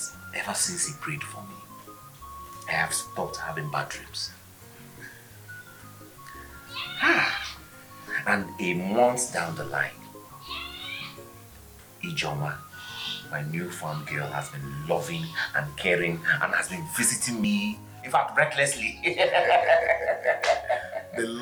ever since he prayed for me, I have stopped having bad dreams? And a month down the line, Ijoma, my newfound girl, has been loving and caring and has been visiting me, in fact, recklessly. The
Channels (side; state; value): both; identical; correlation 1.00